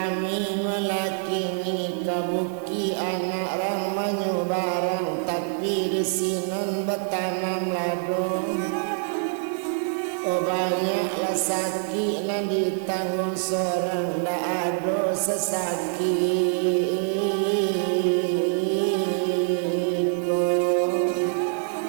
melakini kabuki anak rang manyu barang tapi di sinon betanam lado. Oh banyaklah sakit nan ditanggung seorang dak ado sesakit ko.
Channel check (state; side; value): silent; left; digital silence